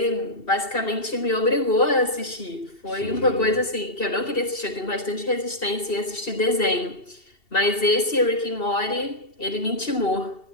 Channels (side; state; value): right; late; 2.7 ms